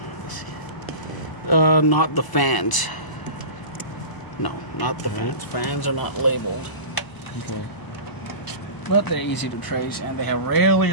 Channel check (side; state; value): right; late; 1.0 ms